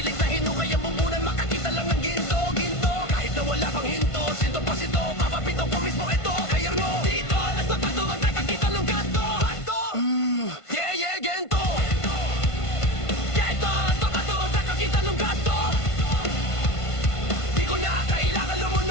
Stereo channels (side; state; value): right; late; 1.5 ms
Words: na hinukay ang bumbunan. Makakita lang ng ginto. Kahit na wala pang hinto. Sinto pa sito, papapito ko mismo ito. Kaya mo, dito, alas na pato. Ang nakakita ng ganto. Yeah, gento. Kita ng gato. Di ko na kailangan